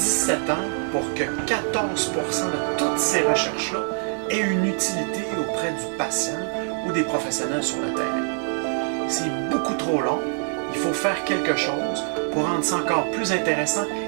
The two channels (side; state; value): left; silent; 57 dB below the other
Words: ans pour que 14% de toutes ces recherches-là aient une utilité auprès du patient ou des professionnels sur le terrain. C'est beaucoup trop long. Il faut faire quelque chose pour rendre ça encore plus intéressant.